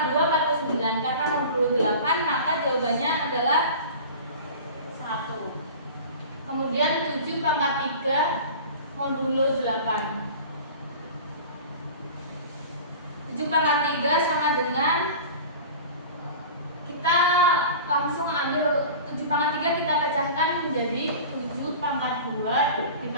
2 49, karena modulo 8 maka jawabannya adalah 1. Kemudian 7 pangkat 3 modulo 8. 7 pangkat 3 sama dengan, kita langsung ambil 7 pangkat 3 kita pecahkan menjadi 7 pangkat 2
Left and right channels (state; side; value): inverted; both; correlation -0.37